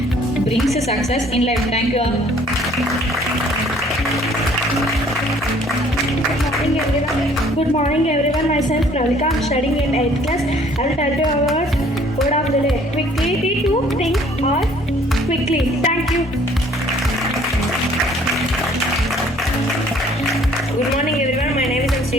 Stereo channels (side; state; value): both; normal; correlation 0.58